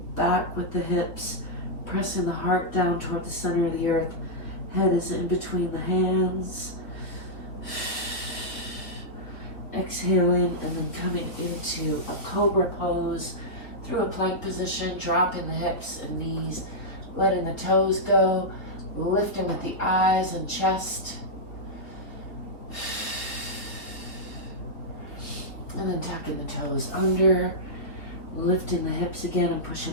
back with the hips, pressing the heart down toward the center of the earth. Head is in between the hands. Exhaling and then coming into a cobra pose through a plank position, dropping the hips and knees, letting the toes go, lifting with the eyes and chest. And then tucking the toes under, lifting the hips again and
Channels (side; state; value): right; late; 3.8 ms